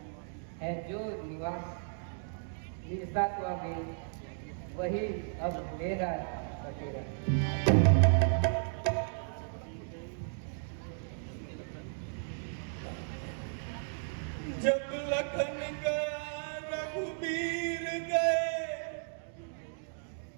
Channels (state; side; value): silent; left; digital silence